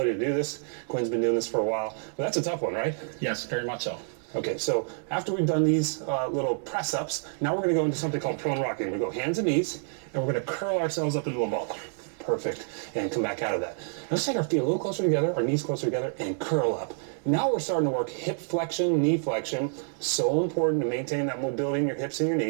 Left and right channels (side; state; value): left; silent; digital silence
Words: to do this. Quinn's been doing this for a while, but that's a tough one, right? Yes, very much so. Okay, so after we've done these little press-ups, now we're going to go into something called prone rocking. We're going to go hands and knees, and we're going to curl ourselves up into a ball. Perfect. And come back out of that. Now let's take our feet a little closer together, our knees closer together, and curl up. Now we're starting to work hip flexion, knee flexion. So important to maintain that mobility in your hips and your